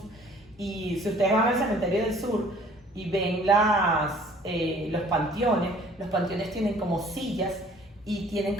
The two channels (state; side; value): normal; both; correlation 0.54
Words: Y si ustedes van al cementerio del sur y ven los panteones tienen como sillas y tienen